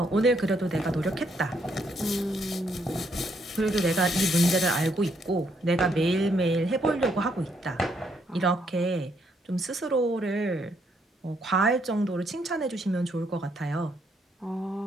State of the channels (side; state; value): both; normal; correlation 0.73